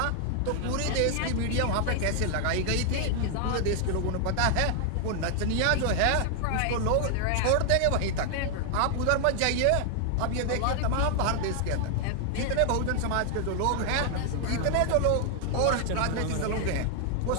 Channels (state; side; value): different; both; correlation 0.00